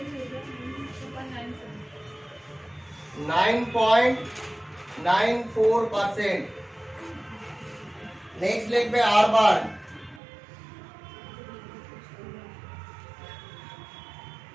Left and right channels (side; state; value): left; drops out; at 10.2 s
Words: 9.94%। नेक्स्ट लिखবে আরবান,